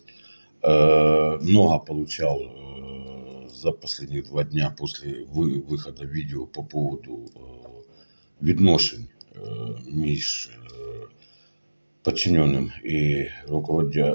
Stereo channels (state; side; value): inverted; both; correlation -1.00